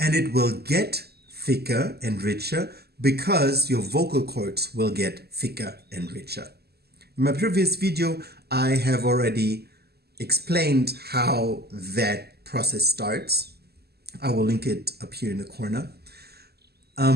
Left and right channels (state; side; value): late; left; 0.46 ms